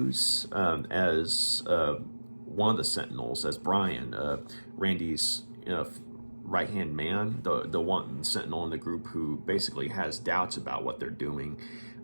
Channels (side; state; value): both; inverted; correlation -1.00